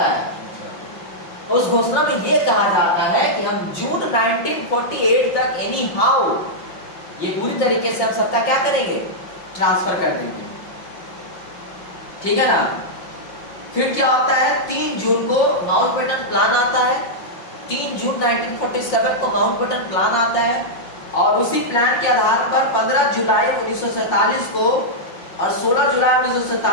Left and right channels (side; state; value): right; late; 5.6 ms